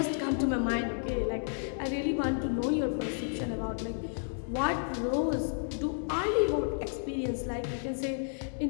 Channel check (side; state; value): right; silent; digital silence